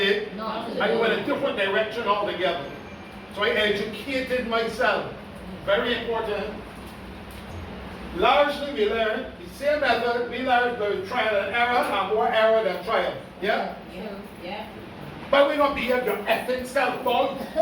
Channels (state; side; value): identical; both; correlation 1.00